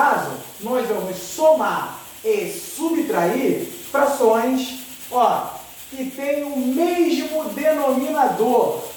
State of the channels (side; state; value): both; identical; correlation 1.00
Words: nós vamos somar e subtrair frações, que têm o mesmo denominador.